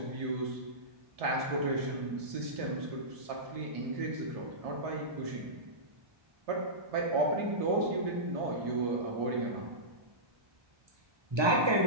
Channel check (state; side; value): late; left; 1.3 ms